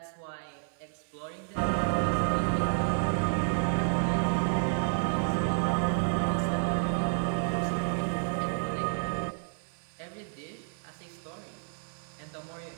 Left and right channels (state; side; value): silent; left; 57 dB below the other